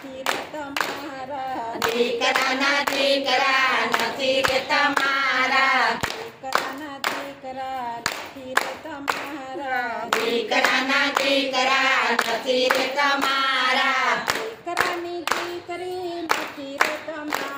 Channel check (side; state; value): both; identical; correlation 1.00